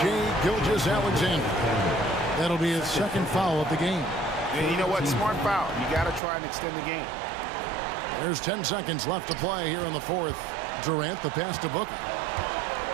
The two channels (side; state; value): left; drops out; at 6.2 s